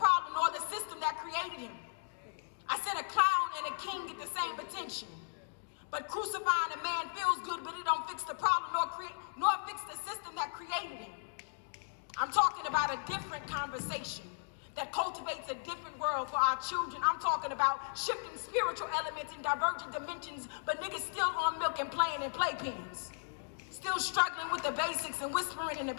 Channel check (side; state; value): right; silent; digital silence